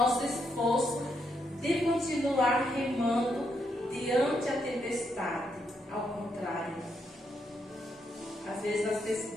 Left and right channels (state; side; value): normal; both; correlation 0.79